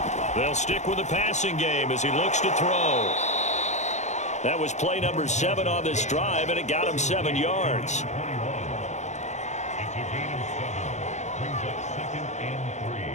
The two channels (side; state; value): right; late; 0.34 ms